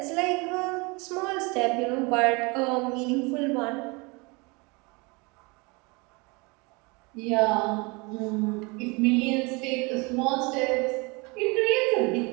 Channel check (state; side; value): quieter; left; 27.9 dB